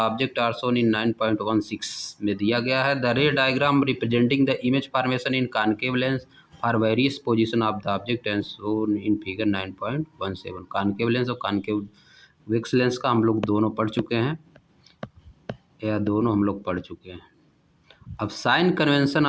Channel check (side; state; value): both; identical; correlation 1.00